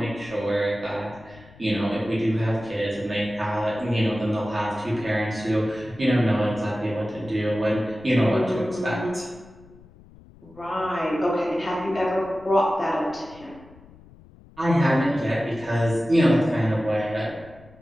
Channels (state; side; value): noise; left; rumble, 23 dB below the sound